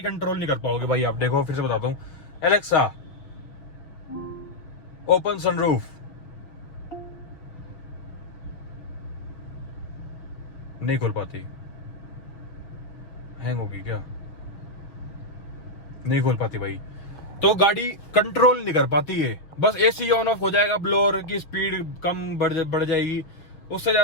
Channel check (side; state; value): right; late; 6.3 ms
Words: कंट्रोल नहीं कर पाओगे भाई आप। देखो फिर से बताता हूँ, एलेक्सा ओपन सनरूफ। नहीं खोल पाती, हैंग होगी क्या? नहीं खोल पाती भाई। तो गाड़ी कंट्रोल नहीं कर पाती है, बस एसी ऑन ऑफ हो जाएगा, ब्लोअर की स्पीड कम बढ़ जाएगी, उससे